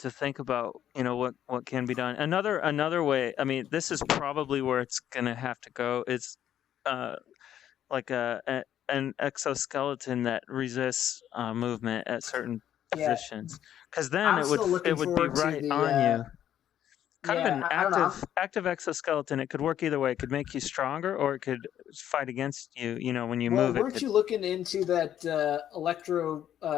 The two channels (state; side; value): quieter; right; 10.7 dB